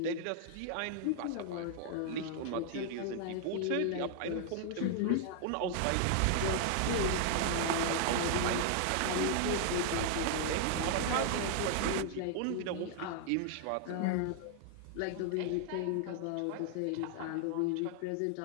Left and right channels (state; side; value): different; both; correlation 0.00